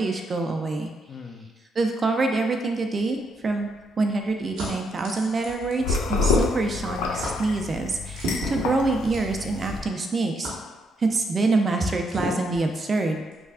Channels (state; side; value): normal; both; correlation 0.77